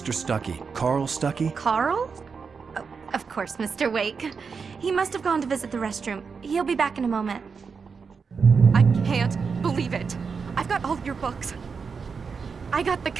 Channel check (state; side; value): quieter; left; 5.5 dB